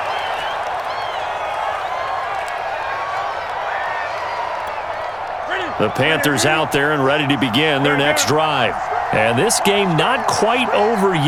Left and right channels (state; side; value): identical; both; correlation 1.00